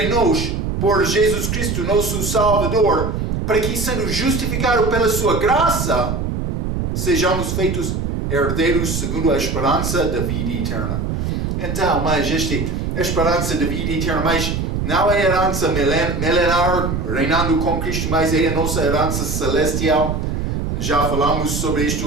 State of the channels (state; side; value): noise; right; rumble, 2 dB below the sound